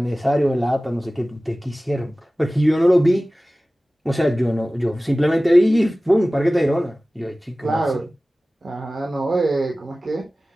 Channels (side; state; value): both; normal; correlation 0.97